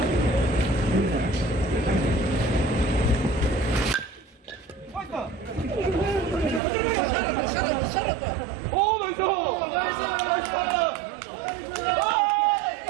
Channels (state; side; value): drops out; left; at 6.6 s